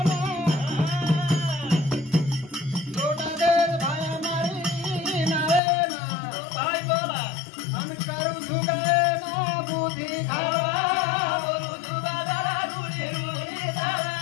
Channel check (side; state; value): right; drops out; at 5.6 s